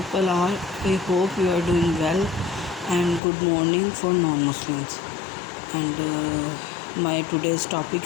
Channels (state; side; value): drops out; right; at 3.2 s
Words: are? I hope you are doing well, and good morning for non-Muslims. And my today's topic